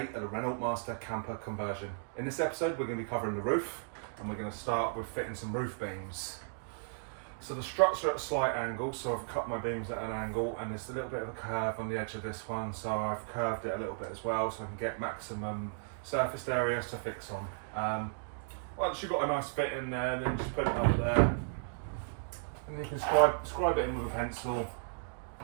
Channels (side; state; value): left; silent; digital silence